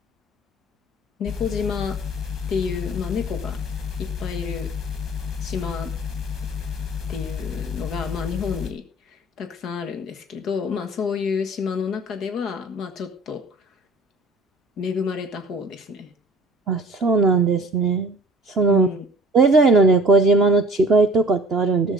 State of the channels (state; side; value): normal; both; correlation 0.49